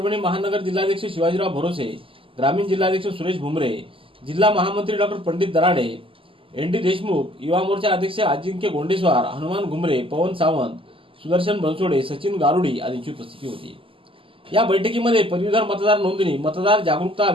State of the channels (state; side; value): late; left; 0.26 ms